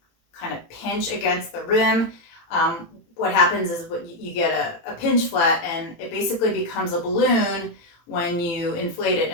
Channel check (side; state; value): right; late; 18 ms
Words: of pinch against the rim, what happens is you get a pinch flat, and it basically becomes a balloon when you inflate it